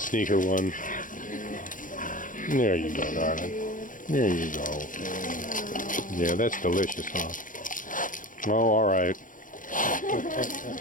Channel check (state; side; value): late; right; 0.39 ms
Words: her one. There you go, darling. There you go. Yeah, that's delicious, huh? Oh, all right.